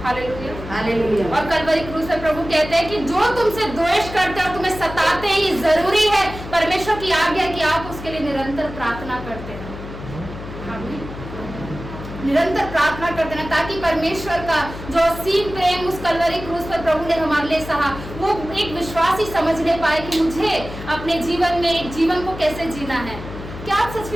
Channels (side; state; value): left; noise; hum, 11 dB below the sound